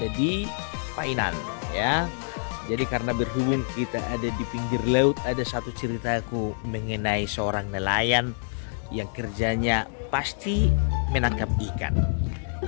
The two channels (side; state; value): right; silent; digital silence